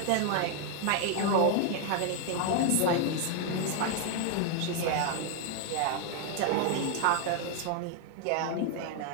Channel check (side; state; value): both; different; correlation 0.00